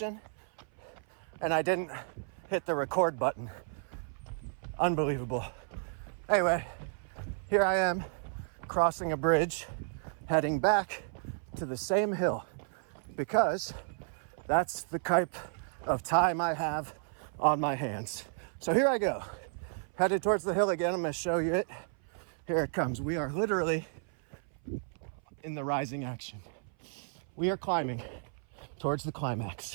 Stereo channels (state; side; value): silent; left; 56 dB below the other